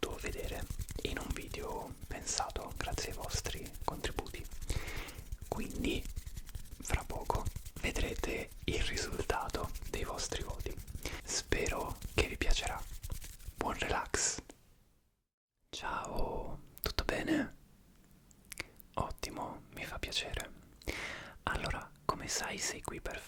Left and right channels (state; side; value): identical; both; correlation 1.00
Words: vedere in un video pensato grazie ai vostri contributi. Quindi fra poco vedrete il risultato dei vostri voti. Spero che vi piacerà. Buon relax. Ciao, tutto bene? Ottimo, mi fa piacere. Allora, come sai, sei qui per